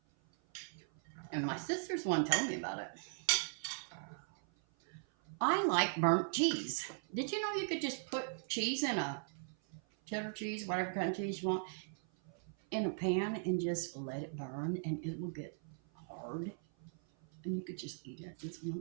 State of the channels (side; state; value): left; silent; 52 dB below the other